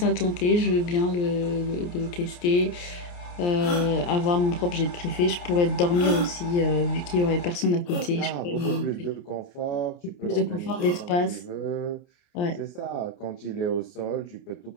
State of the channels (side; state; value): right; late; 29 ms